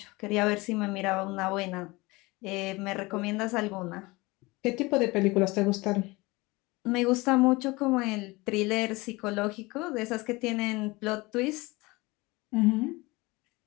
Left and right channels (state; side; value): quieter; right; 22.9 dB